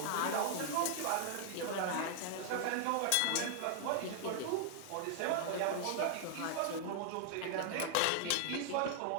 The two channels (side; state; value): both; different; correlation 0.00